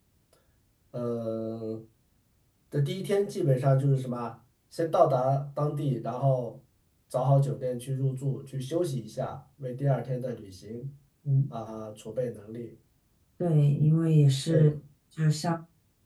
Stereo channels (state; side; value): identical; both; correlation 1.00